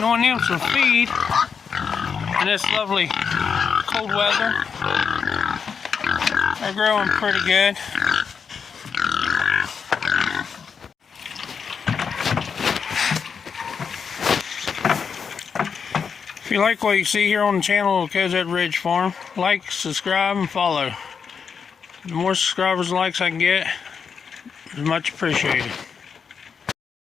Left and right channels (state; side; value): quieter; right; 6.3 dB